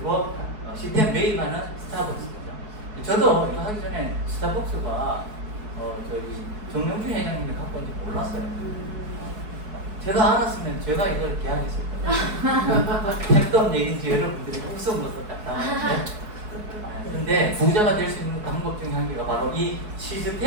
시스템 매입하는 스타벅스죠. 저도 이거 하기 전에 스타벅스가 저기 정명준 회장님이 갖고 온지 몰랐어요. 제가 알았으면 제가 이걸 계약했을 거예요. 택도 얘기인지 여러분들이 웃음으로 딱 나오는데, 근데 부자가 될 수 있는 방법 중에 한 개가 바로 이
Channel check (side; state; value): left; late; 4.7 ms